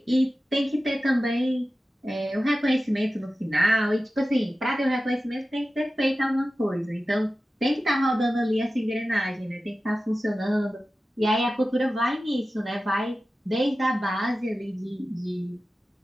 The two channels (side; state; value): both; normal; correlation 0.95